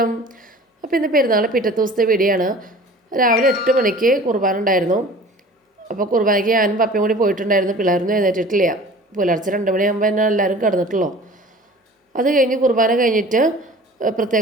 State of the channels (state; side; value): normal; both; correlation 0.44